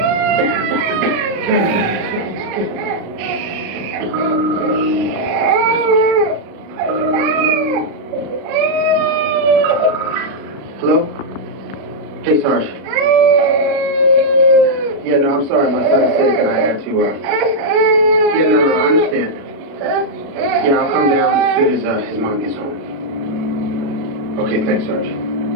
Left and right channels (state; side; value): late; left; 36 ms